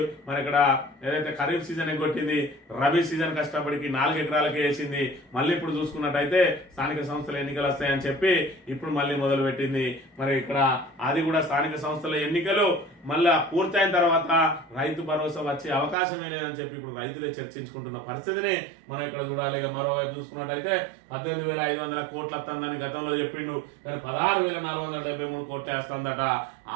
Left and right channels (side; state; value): left; drops out; at 16.0 s